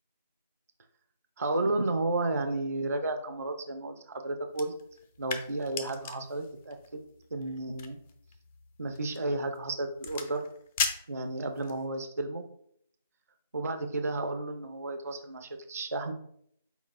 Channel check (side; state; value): both; inverted; correlation -0.66